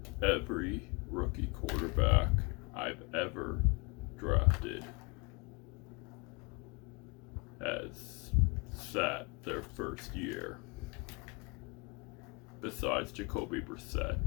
Every rookie quarterback I've ever drafted has sat their first year. Besides Jacoby Brissett,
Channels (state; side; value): quieter; right; 30.6 dB